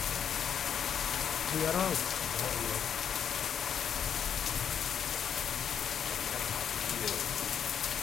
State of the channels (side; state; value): right; quieter; 8.1 dB